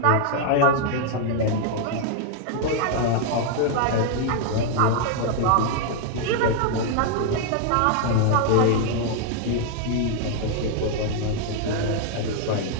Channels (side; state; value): both; different; correlation 0.00